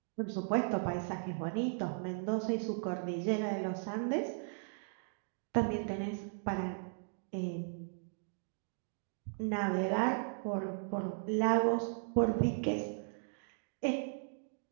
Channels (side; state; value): left; silent; digital silence